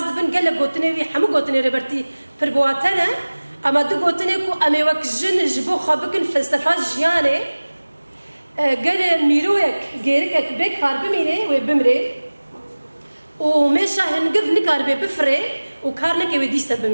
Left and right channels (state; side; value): inverted; both; correlation -1.00